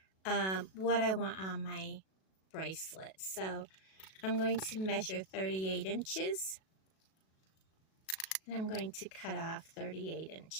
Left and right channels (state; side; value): late; right; 37 ms